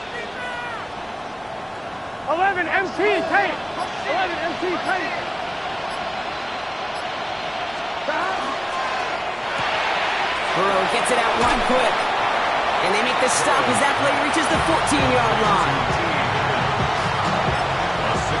11 MT, tank. 11 MT, tank. Burrow gets it out wide quick. And they make the stop as that play reaches the 14-yard line.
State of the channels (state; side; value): identical; both; correlation 1.00